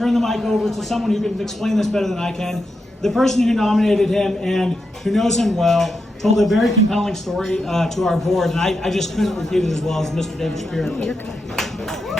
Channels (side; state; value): both; normal; correlation 0.86